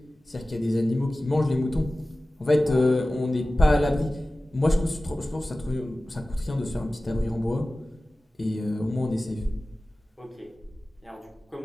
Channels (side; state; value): both; normal; correlation 0.96